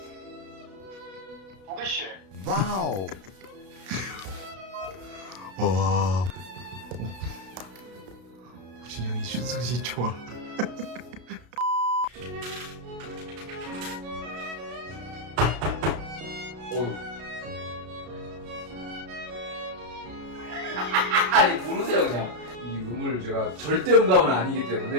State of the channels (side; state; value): left; late; 33 ms